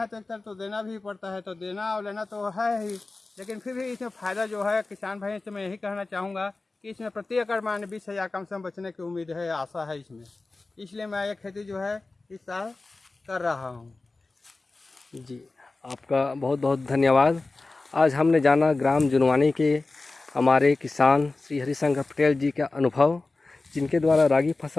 तो एक तरफ तो देना भी पड़ता है, तो देना और लेना तो है ही, लेकिन फिर भी इसमें फ़ायदा जो है किसान भाई से मैं यही कहना चाहूँगा कि इसमें प्रति एकड़ मान 20,000 कम से कम बचने की उम्मीद है, आशा है इसमें। इसलिए मैं ये खेती जो है इस साल कर रहा हूँ। जी, आपका बहुत बहुत धन्यवाद। आज हमने जाना ग्राम जुनवानी के हमारे किसान श्री हरिशंकर पटेल जी का अनुभव, जिनके द्वारा रागी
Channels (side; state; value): right; quieter; 3.4 dB